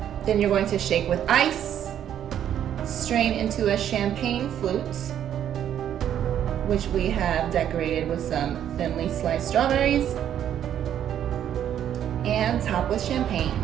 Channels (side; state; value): left; quieter; 10.1 dB